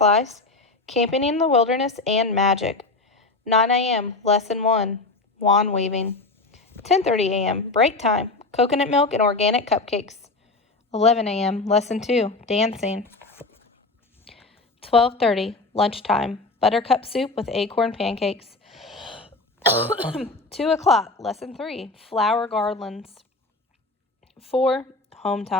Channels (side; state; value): right; quieter; 3.3 dB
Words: camping in the wilderness, and magic. 9 a.m., Lesson 1, wand weaving. 10:30 a.m., break time, coconut milk and organic cupcakes. 11 a.m., Lesson 2, dancing. 12:30, lunchtime, buttercup soup with acorn pancakes. 2 o'clock, Lesson 3, flower garlands. 4, home